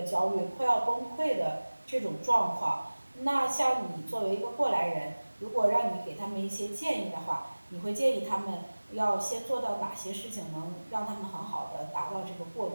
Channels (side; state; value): both; inverted; correlation -1.00